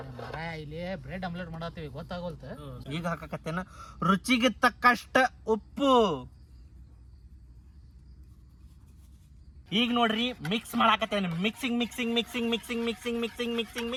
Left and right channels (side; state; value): both; identical; correlation 1.00